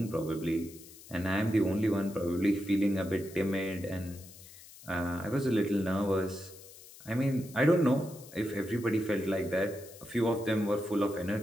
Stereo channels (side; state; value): left; noise; hiss, 19 dB below the sound